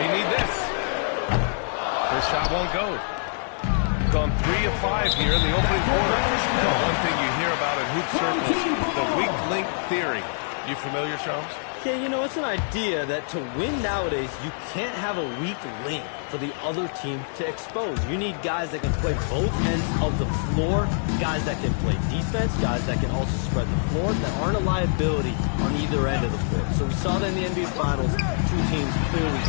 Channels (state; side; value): silent; right; 62 dB below the other